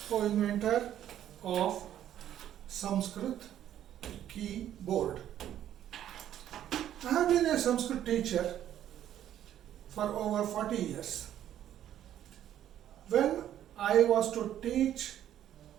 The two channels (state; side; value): quieter; left; 11.2 dB